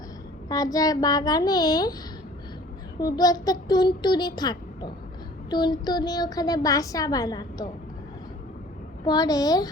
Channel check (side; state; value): both; normal; correlation 0.49